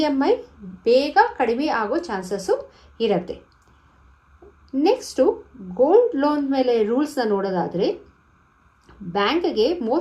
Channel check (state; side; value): identical; both; correlation 1.00